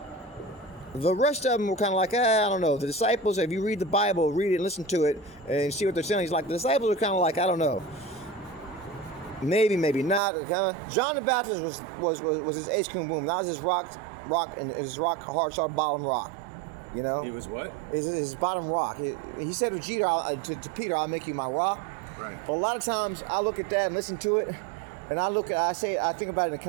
The rest of them were kind of like, I don't know. The disciples, if you read the Bible, read it and listen to it and see what they're saying, he's like, the disciples are kind of like, I don't know. Maybe not. John the Baptist was his ace cum boom. That was his rock, and his rock hard start bottom rock. He was what? His bottom rock. He said to Peter, I'll make you my rock. Right. But a lot of times I look at that and listen to it, and I think about it in a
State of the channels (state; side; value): drops out; left; at 10.2 s